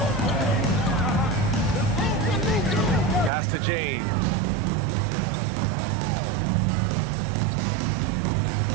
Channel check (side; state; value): left; drops out; at 3.3 s